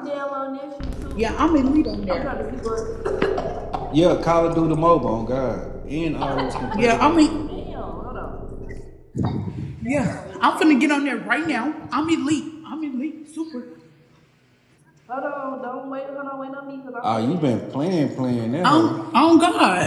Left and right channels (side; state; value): both; identical; correlation 1.00